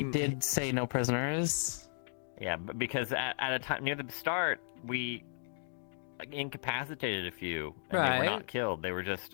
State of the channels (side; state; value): right; silent; digital silence